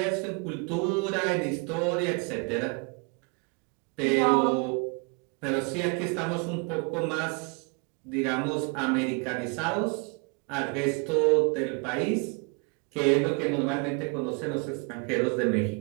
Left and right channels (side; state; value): left; quieter; 33.1 dB